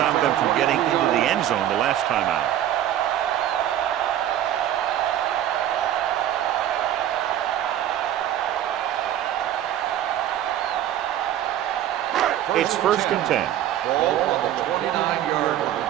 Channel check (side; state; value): left; quieter; 11.6 dB